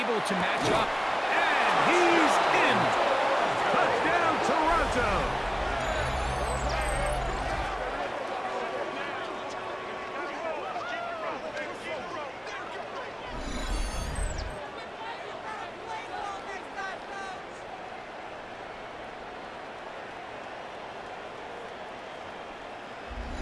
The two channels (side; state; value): both; identical; correlation 1.00